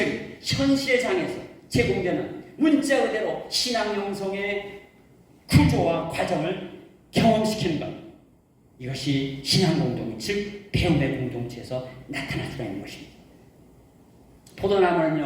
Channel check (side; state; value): both; identical; correlation 1.00